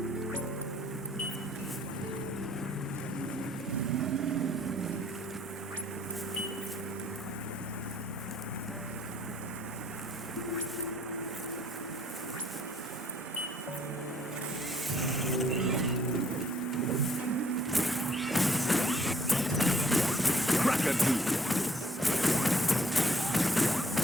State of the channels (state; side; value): normal; both; correlation 0.62